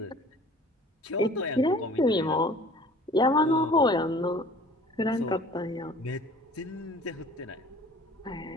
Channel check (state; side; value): normal; both; correlation 0.48